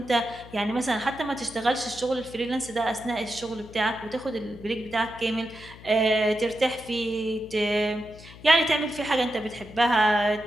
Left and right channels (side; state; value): left; noise; hum, 18 dB below the sound